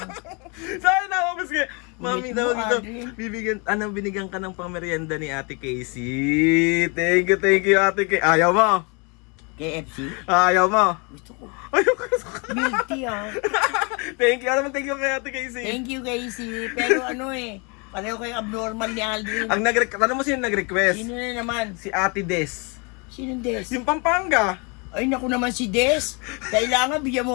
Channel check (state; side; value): quieter; right; 31.8 dB